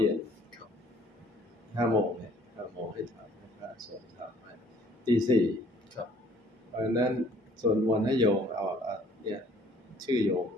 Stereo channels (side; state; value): both; normal; correlation 0.58